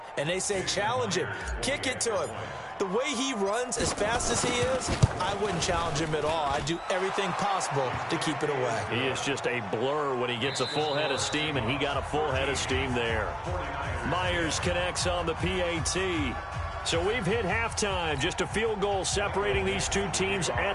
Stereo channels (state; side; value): identical; both; correlation 1.00